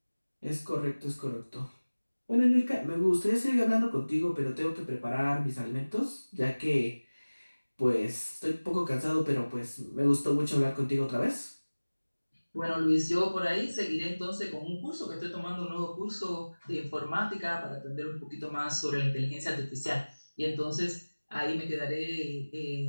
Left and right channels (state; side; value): inverted; both; correlation -1.00